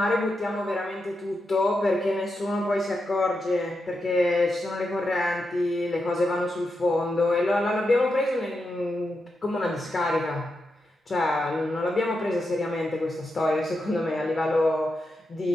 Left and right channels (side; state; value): both; normal; correlation 0.87